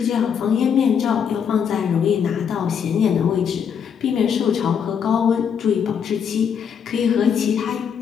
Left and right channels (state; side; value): quieter; right; 7.4 dB